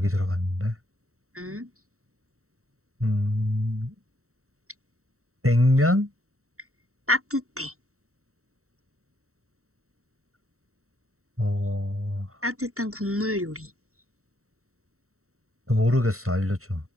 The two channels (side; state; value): left; late; 0.64 ms